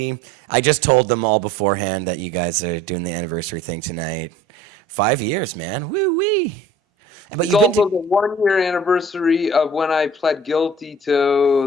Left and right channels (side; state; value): both; normal; correlation 0.48